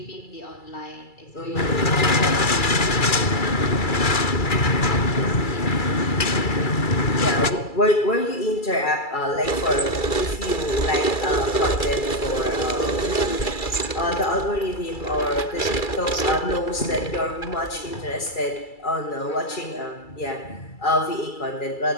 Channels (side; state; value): right; late; 2.3 ms